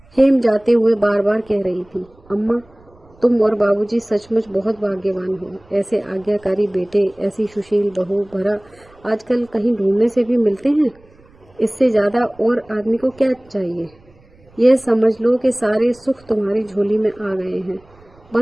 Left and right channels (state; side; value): noise; right; rumble, 29 dB below the sound